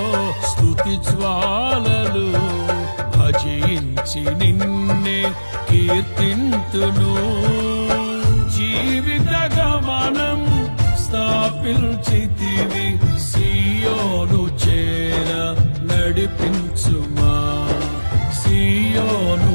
స్తుతి జ్వాలలు. భజించి నిన్నే కీర్తింతును, జీవిత గమనం స్థాపించితివి. సియోను చేర నడిపించుమా, సియోను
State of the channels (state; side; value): inverted; both; correlation -1.00